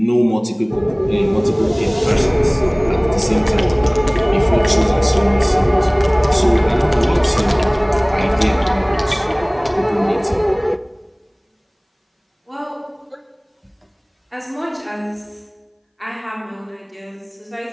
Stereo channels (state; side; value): identical; both; correlation 1.00